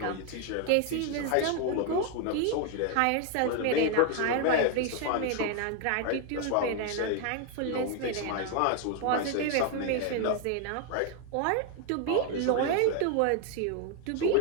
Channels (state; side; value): different; both; correlation 0.01